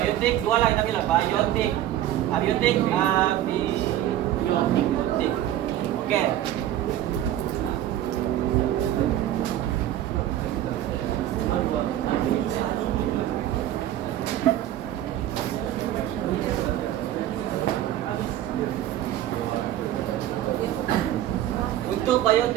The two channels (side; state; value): left; quieter; 12.6 dB